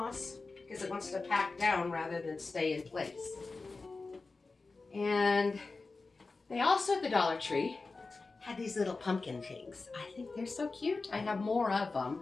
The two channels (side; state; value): right; quieter; 3.8 dB